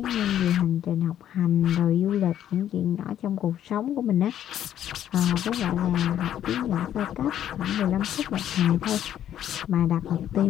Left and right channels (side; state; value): right; quieter; 10.9 dB